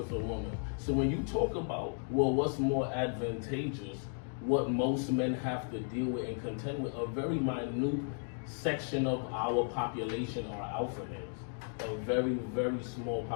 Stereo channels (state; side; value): silent; right; 55 dB below the other